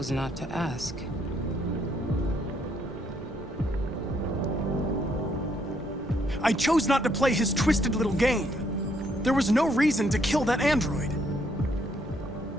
not to ask. I chose not to play his twisted little game. There was no reason to kill that android.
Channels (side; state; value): both; normal; correlation 0.71